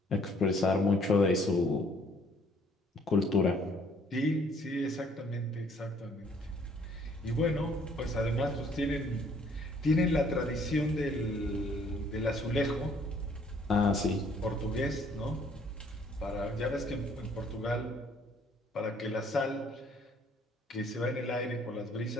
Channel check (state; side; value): normal; both; correlation 0.62